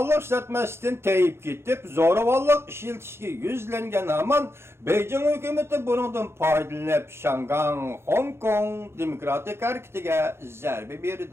ishlatmasdan tayib ketib, zo'ravonlik ishlatishga yuzlangan hamon Beijing hukumati bundan foydalanib Şangang, Hong Kong demokratik harakatiga zarba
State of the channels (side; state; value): left; late; 0.12 ms